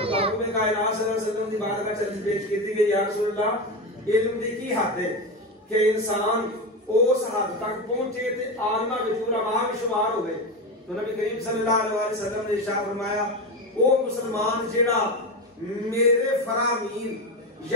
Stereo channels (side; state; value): both; normal; correlation 0.18